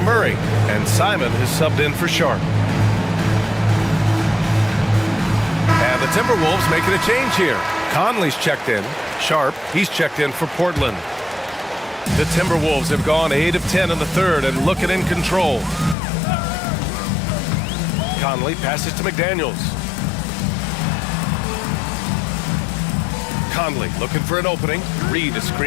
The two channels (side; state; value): right; drops out; at 16.0 s